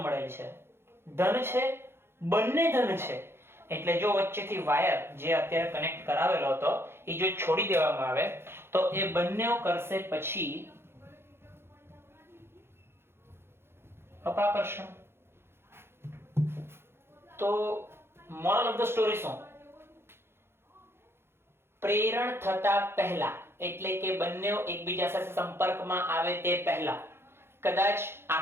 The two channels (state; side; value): late; left; 0.12 ms